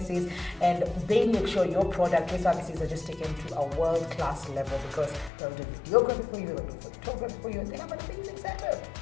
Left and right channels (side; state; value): right; drops out; at 5.3 s